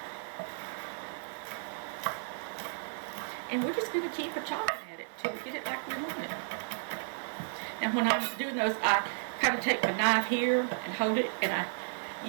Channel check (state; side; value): silent; left; 56 dB below the other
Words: And we're just going to keep chopping at it till we get it like we want it. And when I'm doing those, I kind of take my knife here and hold it, and